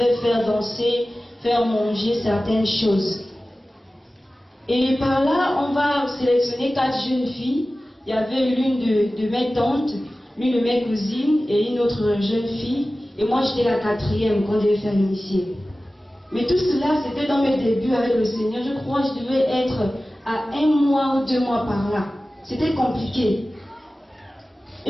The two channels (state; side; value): normal; both; correlation 0.96